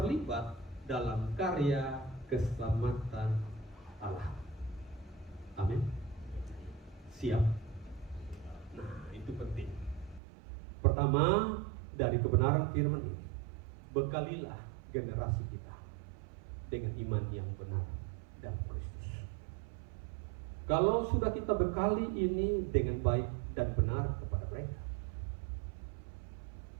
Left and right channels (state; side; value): drops out; left; at 10.2 s